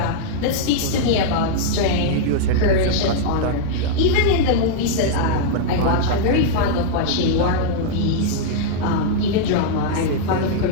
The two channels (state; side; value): different; both; correlation -0.01